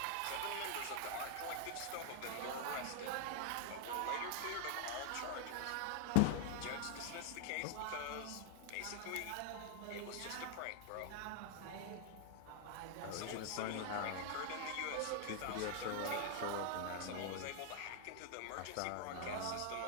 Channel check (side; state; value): both; different; correlation 0.00